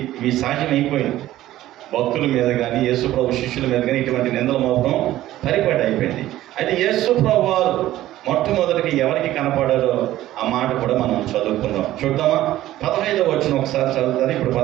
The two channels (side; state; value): left; quieter; 14.5 dB